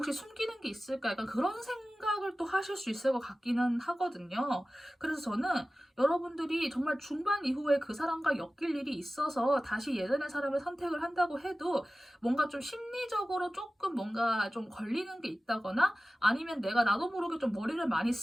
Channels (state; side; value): normal; both; correlation 0.96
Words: 숨기는 게 있을까? 약간 그런 생각을 또 하실 수 있을 것 같기는 하거든요. 그래서 저는 여러분들이 정말 중반 이후에 그 사람과 엮일 일이 있어서 다시 예전의 사람을 선택을 한다고 해도 뭔가 좀 심리적으로 조금 뭔가 좀 걸리는 게 있다거나 아니면 내가 나도 모르게 좀 머리를 많이